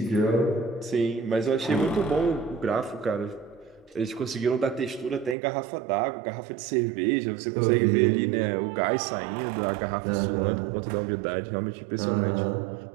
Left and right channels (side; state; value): left; drops out; at 5.4 s